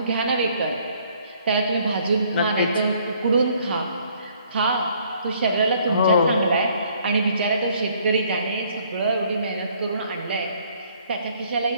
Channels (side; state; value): both; inverted; correlation -0.63